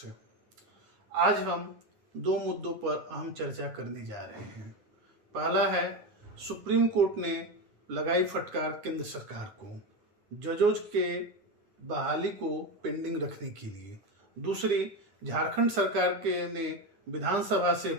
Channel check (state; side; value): late; left; 9.7 ms